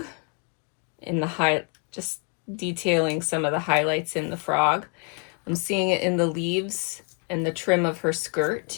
in the just detailing some of the highlights in the frog. I'm seeing it in the leaves and the trim of her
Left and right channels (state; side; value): quieter; right; 35.9 dB